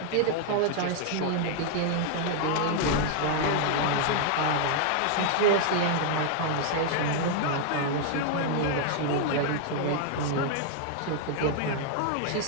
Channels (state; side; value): different; both; correlation 0.00